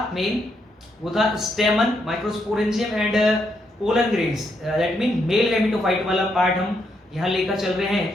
मेन वो था स्टेमन, microsporangium and pollen grains, that mean male gametophyte वाला पार्ट हम यहाँ लेकर चल रहे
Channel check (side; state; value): both; normal; correlation 0.78